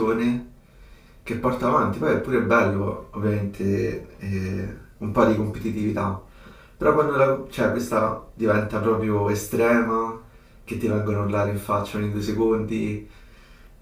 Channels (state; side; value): identical; both; correlation 1.00